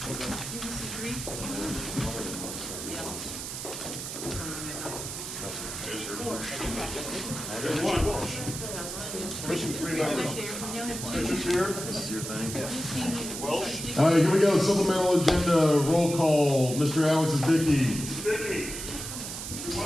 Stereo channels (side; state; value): right; noise; hiss, 7 dB below the sound